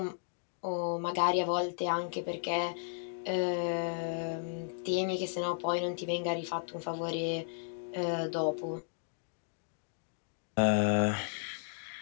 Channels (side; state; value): right; silent; digital silence